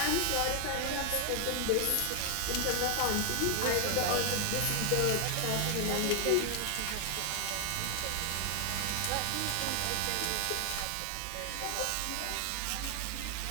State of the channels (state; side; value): different; both; correlation 0.00